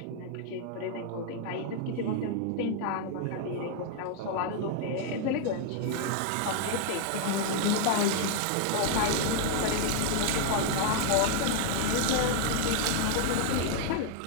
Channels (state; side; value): different; both; correlation 0.00